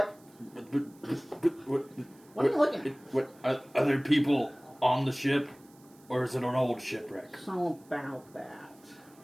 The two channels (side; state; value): right; noise; hiss, 28 dB below the sound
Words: What are you looking at? What are there people on the ship, or is it an old shipwreck? So about that.